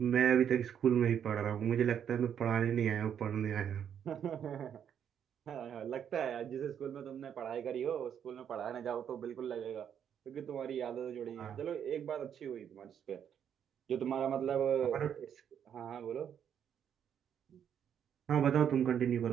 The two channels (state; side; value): quieter; left; 8.7 dB